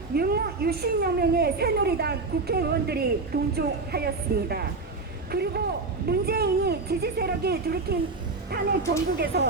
유신여 명의 새누리당 국회의원들이 동조하였습니다. 그리고 문재인이 지지 세력이 들이킨 탄핵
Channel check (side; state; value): left; quieter; 3.8 dB